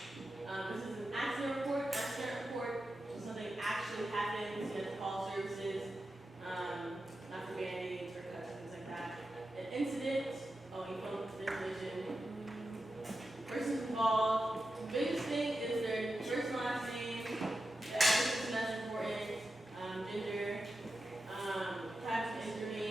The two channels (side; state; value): both; normal; correlation 0.91